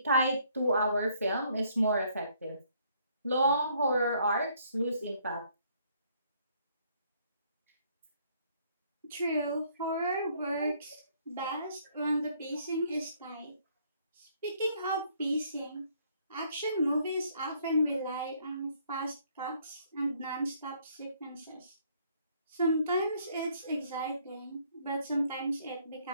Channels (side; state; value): both; inverted; correlation -0.65